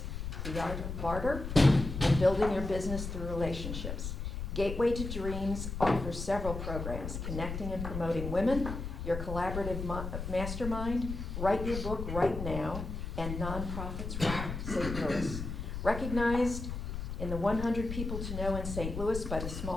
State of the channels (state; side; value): noise; left; rumble, 5 dB below the sound